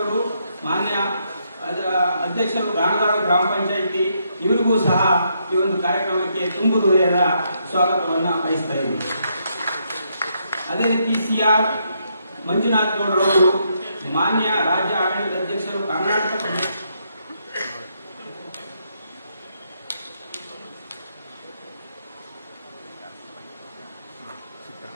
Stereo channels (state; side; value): inverted; both; correlation -0.76